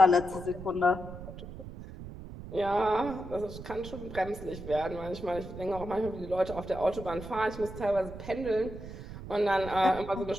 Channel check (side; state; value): right; noise; rumble, 12 dB below the sound